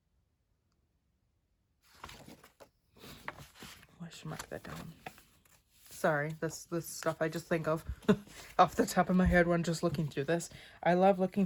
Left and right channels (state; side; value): identical; both; correlation 1.00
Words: I should mark that down. Sorry, this stuff I just think of off the top of my head when just looking through this. I love looking